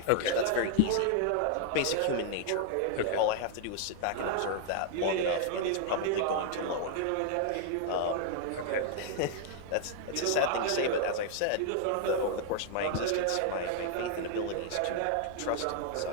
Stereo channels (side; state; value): both; different; correlation 0.00